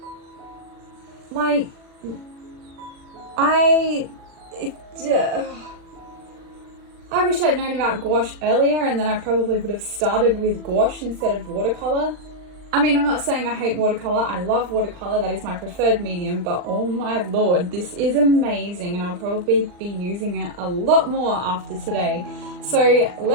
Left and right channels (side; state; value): left; late; 39 ms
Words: Like, I wish I'd known about gouache earlier, and then I probably would have started with gouache instead of watercolor. I mean, I'm not saying I hate watercolor. I love watercolor. That is my preferred medium, but oh my lord, this is amazing, and I'll probably be using it a lot more after today. So